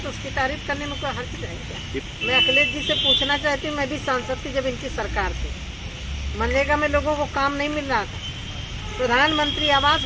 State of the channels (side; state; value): both; identical; correlation 1.00